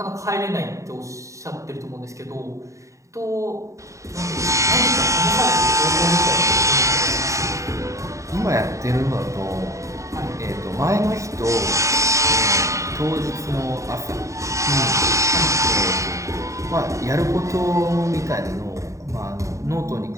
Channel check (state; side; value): late; left; 0.15 ms